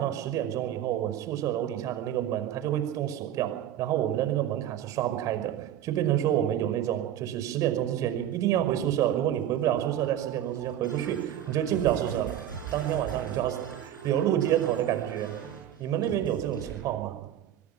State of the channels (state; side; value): quieter; left; 11.3 dB